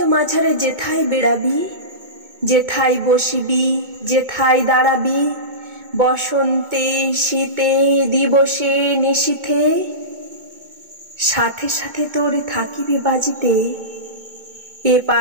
মাঝারে যেথায় বেড়াবি, যেথায় বসিবি, যেথায় দাঁড়াবি, বসন্তে শীতে দিবসে নিশীথে, সাথে সাথে তোর থাকিবে বাজিতে। এ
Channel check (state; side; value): late; left; 2.2 ms